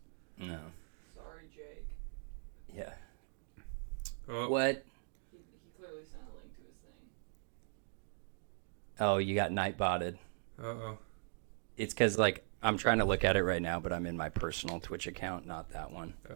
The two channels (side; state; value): left; silent; digital silence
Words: No. Sorry, Jake. Yeah. Oh, What? He clearly sent a link to his thing. Oh, you got Nightbotted. Uh-oh. It's because, I'm trying to look at it right now, but I'm in my personal Twitch account, not that one.